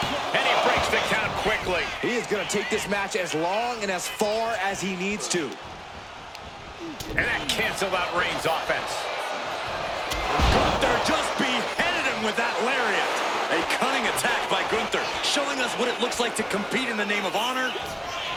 And he breaks the count quickly. He is going to take this match as long and as far as he needs to. And that canceled out Reigns' offense. Gunther just beheaded him with that lariat. A cunning attack by Gunther, showing us what it looks like to compete in the name of honor.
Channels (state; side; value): identical; both; correlation 1.00